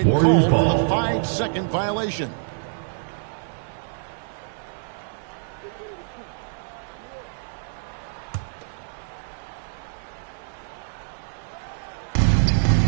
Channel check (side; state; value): left; silent; 56 dB below the other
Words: Warriors called ball. for the 5-second violation.